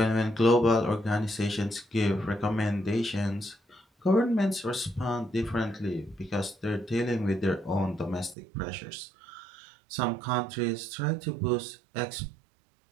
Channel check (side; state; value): left; drops out; at 8.3 s